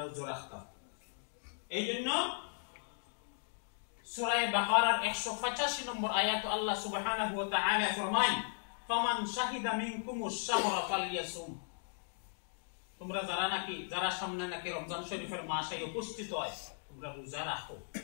রোজা রাখতাম। এই জন্য সূরা বাকারার 185 নম্বর আয়াত আল্লাহ সুবহানাহু ওয়া তাআলা ফরমায়, ফামান শাহিদা মিনকুমুশ শাহরা ফালইয়াসুম, তোমরা যারা সামনে নাকি রমজান শরীফের মাসে উপস্থিত হয়, তোমরা রোজা রাখো।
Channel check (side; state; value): right; silent; digital silence